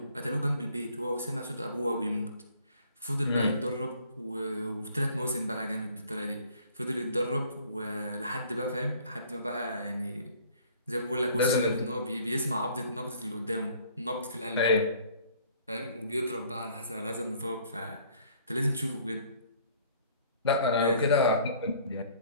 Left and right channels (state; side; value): inverted; both; correlation -0.56